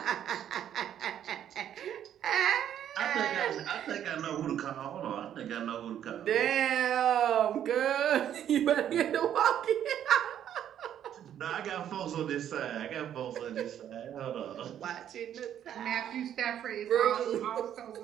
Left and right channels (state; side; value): quieter; left; 10.2 dB